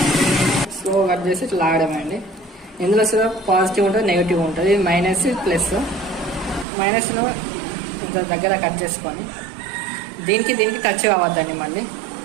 స్లో కట్ చేసి ఇట్లా లాగడమే అండి. ఇందులో పాజిటివ్ ఉంటుంది, నెగిటివ్ ఉంటుంది. ఇది మైనస్, ప్లస్. మైనస్ను దగ్గర కట్ చేసుకొని దీనికి టచ్ కావద్దండి. మళ్ళీ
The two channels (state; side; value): drops out; left; at 6.7 s